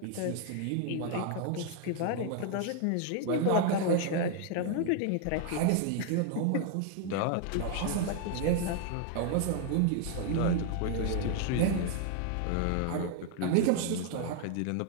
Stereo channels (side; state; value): both; different; correlation 0.00